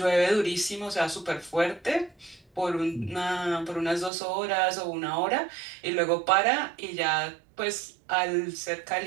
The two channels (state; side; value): drops out; left; at 4.1 s